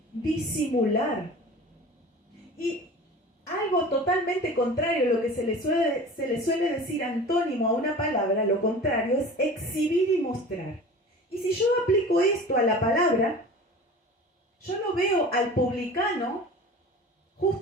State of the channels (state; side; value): normal; both; correlation 0.38